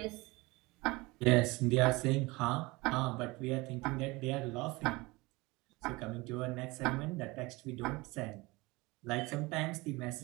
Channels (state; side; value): quieter; left; 23.1 dB